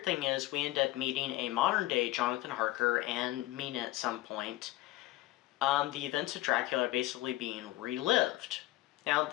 thing is we end up meeting a modern-day Jonathan Harker and Mina at some point. The events of Dracula are basically being relived. Now,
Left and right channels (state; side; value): quieter; right; 17.2 dB